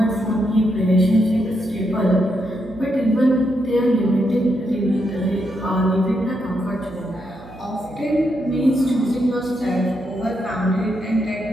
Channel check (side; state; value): right; noise; hum, 20 dB below the sound